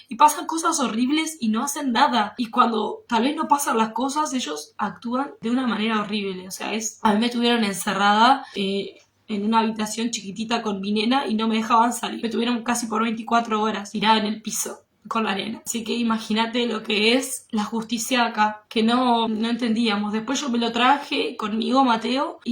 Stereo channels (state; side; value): identical; both; correlation 1.00